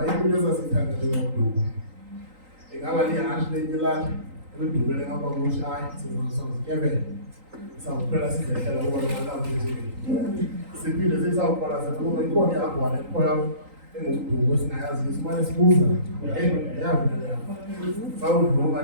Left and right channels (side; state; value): left; late; 3.9 ms